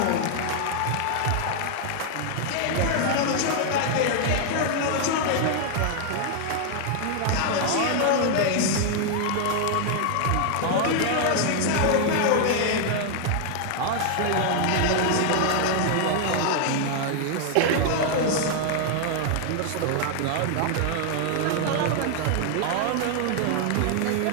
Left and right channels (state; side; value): different; both; correlation 0.00